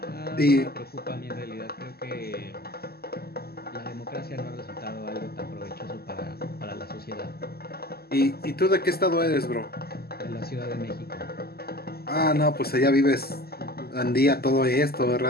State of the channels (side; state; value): right; late; 0.46 ms